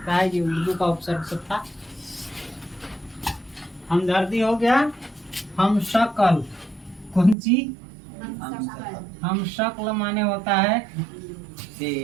है, ये उर्दू का उपसर्ग सब था। हमदर्दी हो गया। हम शक्ल। कौन सी? हम शक्ल माने होता है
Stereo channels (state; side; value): drops out; left; at 7.4 s